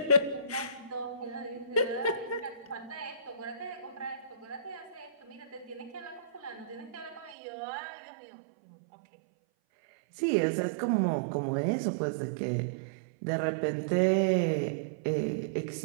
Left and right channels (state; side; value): drops out; left; at 7.4 s